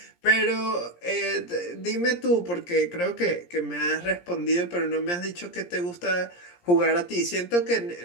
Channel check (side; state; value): right; late; 17 ms